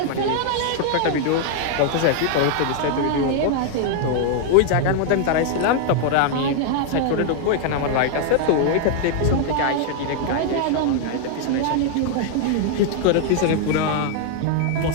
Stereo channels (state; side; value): different; both; correlation 0.00